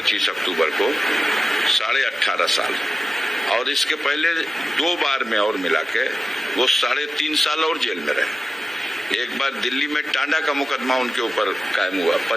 अक्टूबर को, 18.5 साल। और इसके पहले 2 बार में और मिला के वो 3.5 साल और जेल में रहे। एक बार दिल्ली में टांडा का मुकदमा उनके ऊपर कायम हुआ,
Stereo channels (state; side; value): normal; both; correlation 0.94